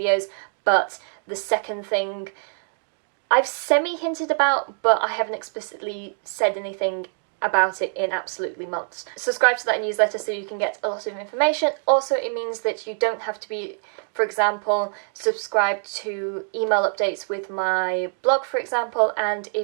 but the second thing I've semi-hinted about, but I haven't explicitly said anything about it in absolutely months. Subscribe to that newsletter so you can get a lot of information. Also, it means that you don't have to be, for example, subscribed to email updates with my blog, for example, and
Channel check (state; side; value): silent; left; 62 dB below the other